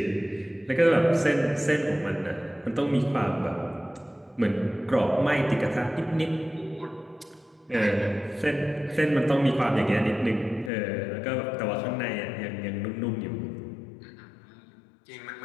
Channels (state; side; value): drops out; right; at 10.7 s